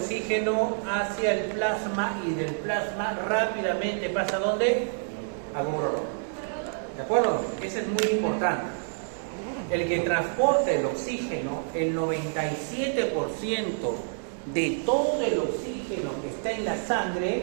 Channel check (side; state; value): left; silent; 59 dB below the other